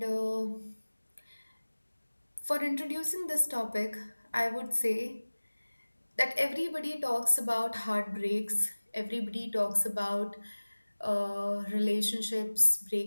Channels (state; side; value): inverted; both; correlation -1.00